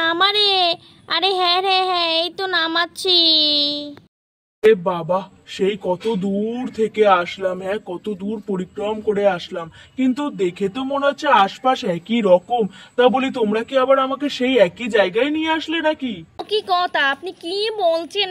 আরে হ্যাঁ রে হ্যাঁ, এই তো নামাচ্ছি। এ বাবা, সেই কত দূর থেকে আসলাম, হ্যাঁ কত দূর পরিক্রম করে আসলাম, কিন্তু দেখে তো মনে হচ্ছে আশপাশ একই রকম। তা বলি, তোমরা কি আবার আমাকে সেই একই জায়গায় নিয়ে আসলে নাকি? কি কথা, আপনি কি বলছেন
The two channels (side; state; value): both; identical; correlation 1.00